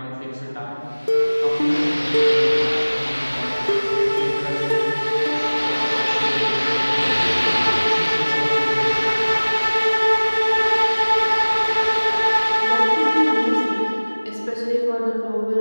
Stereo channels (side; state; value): both; inverted; correlation -1.00